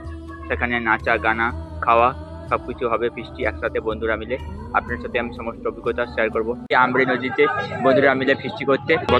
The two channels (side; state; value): both; identical; correlation 1.00